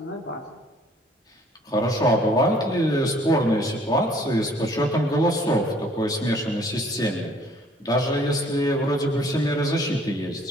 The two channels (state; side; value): normal; both; correlation 0.58